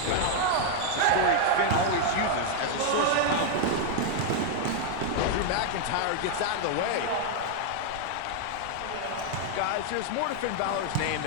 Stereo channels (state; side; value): different; both; correlation 0.00